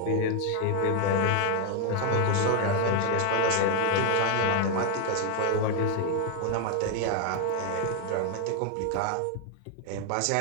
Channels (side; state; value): both; different; correlation 0.00